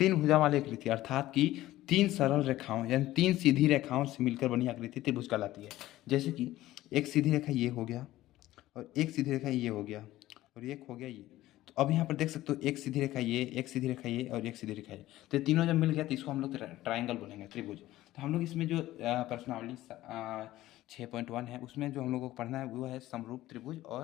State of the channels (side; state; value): right; quieter; 15.7 dB